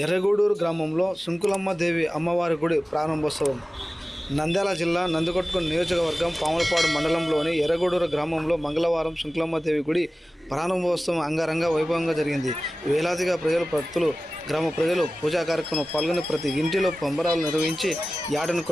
ఎర్రగూడూరు గ్రామంలో సుంకులమ్మ దేవి అమ్మవారి గుడి ప్రారంభోత్సవం. నంద్యాల జిల్లా నందికొట్కూరు నియోజకవర్గం పాములపాడు మండలంలోని ఎర్రగూడూరు గ్రామంలో మంగళవారం సుంకులమ్మ దేవి గుడి ప్రారంభోత్సవం అంగరంగ వైభవంగా జరిగింది. వేలాదిగా భక్తులు గ్రామ ప్రజలు పూజా కార్యక్రమంలో పాల్గొని ప్రతి ఇంటిలో పంబరాలు నిర్వహించి యాటను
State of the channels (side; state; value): both; normal; correlation 0.96